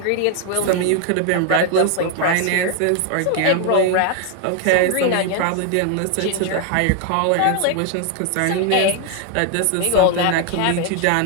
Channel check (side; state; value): both; different; correlation 0.00